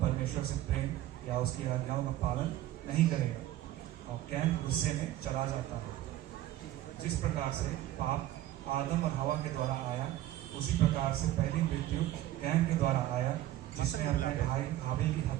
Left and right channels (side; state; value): left; quieter; 14.2 dB